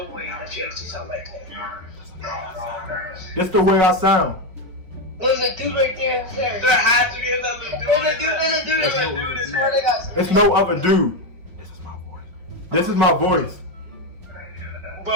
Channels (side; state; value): left; late; 5.7 ms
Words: way that you actually sound like that. That's the way I sound. There's a dude right there. There has to be another dude. There's a dude. It's no other dude. This is my voice.